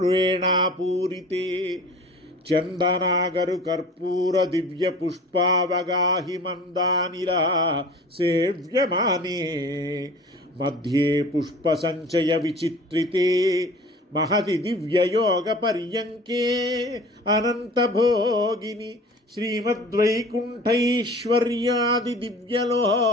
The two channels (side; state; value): both; normal; correlation 0.42